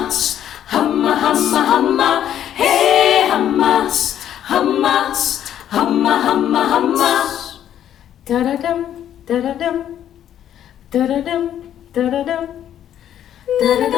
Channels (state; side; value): quieter; right; 10.6 dB